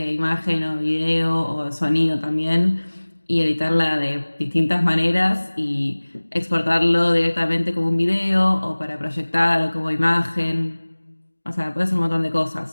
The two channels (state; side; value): inverted; both; correlation -1.00